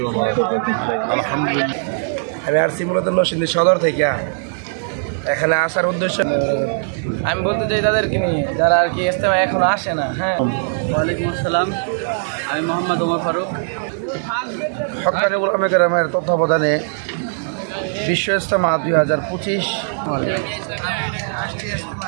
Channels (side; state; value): left; silent; 65 dB below the other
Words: ওয়া বারাকাতুহু। আলহামদুলিল্লাহ, আমি আসছি মূলত নরসিংদী সদর থেকে। এখানে আসার উদ্দেশ্য আমি বলতে চাই তাদেরকে নিয়ে যারা আর কি ইজতেমা এখনো আসে না। হ্যাঁ, ওয়ালাইকুম আসসালাম, আমি মোহাম্মদ ওমর ফারুক। হক্কানি ওলামায়ে কেরামের তত্ত্বাবধানে বিশ্ব ইজতেমা 2025